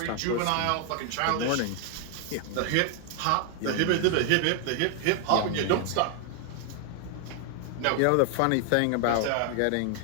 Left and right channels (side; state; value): both; different; correlation 0.00